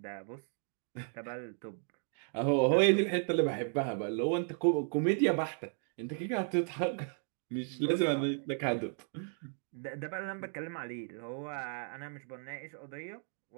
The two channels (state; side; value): silent; left; 55 dB below the other